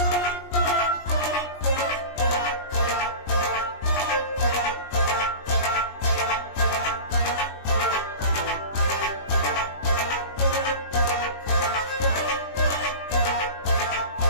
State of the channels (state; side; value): late; right; 20 ms